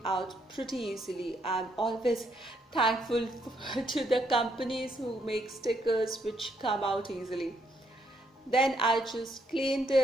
out pretty easily. I'm always thankful to the companies who make stickers which come out easily. Then I just cleaned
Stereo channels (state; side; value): normal; both; correlation 0.74